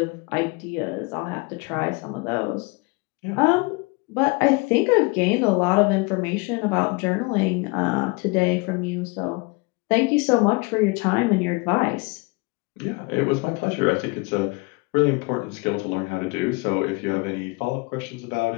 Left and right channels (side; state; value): right; quieter; 27.3 dB